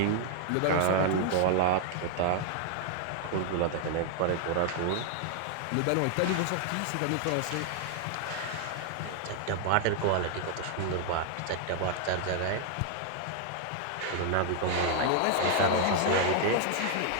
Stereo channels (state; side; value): different; both; correlation 0.00